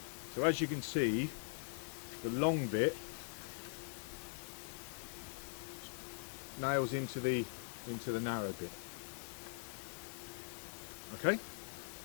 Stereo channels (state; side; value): silent; right; digital silence